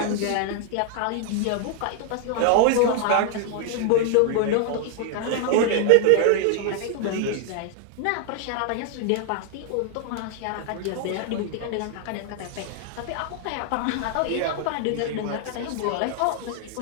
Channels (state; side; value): different; both; correlation 0.00